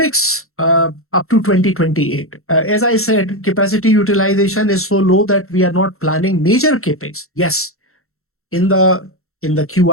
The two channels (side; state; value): right; late; 0.63 ms